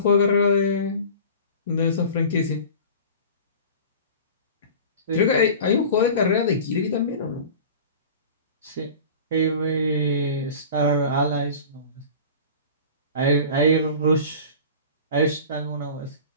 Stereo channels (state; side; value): inverted; both; correlation -0.38